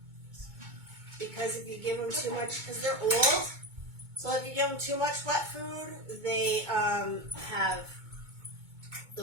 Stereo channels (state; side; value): late; left; 2.2 ms